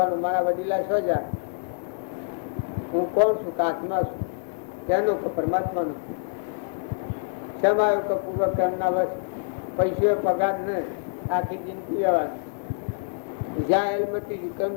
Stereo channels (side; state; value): right; silent; digital silence